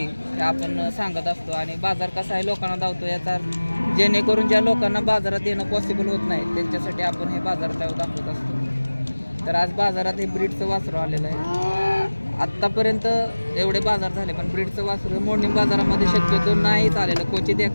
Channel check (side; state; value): both; inverted; correlation -1.00